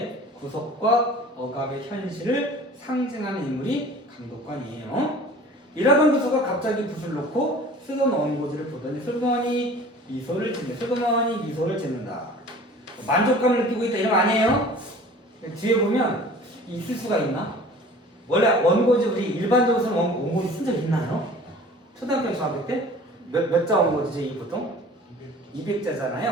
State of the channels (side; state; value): both; normal; correlation 0.45